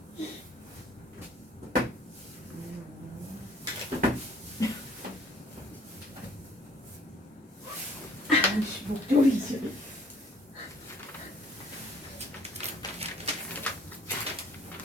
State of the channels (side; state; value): both; normal; correlation 0.56